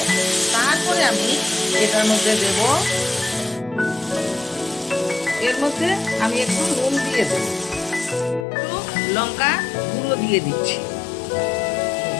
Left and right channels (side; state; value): right; drops out; at 8.5 s